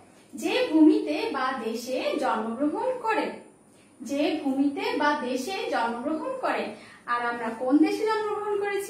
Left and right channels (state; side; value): identical; both; correlation 1.00